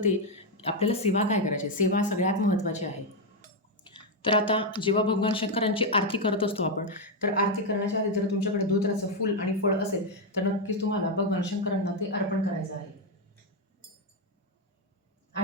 आपल्याला सेवा काय करायची. सेवा सगळ्यात महत्त्वाची आहे. तर आता जेव्हा भगवान शंकरांची आरती करत असतो आपण, तर आरती करण्याच्या आधी जर तुमच्याकडे धोत्राचं फूल आणि फळ असेल तर नक्कीच तुम्हाला भगवान शंकरांना ते अर्पण करायचं आहे.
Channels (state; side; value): normal; both; correlation 0.03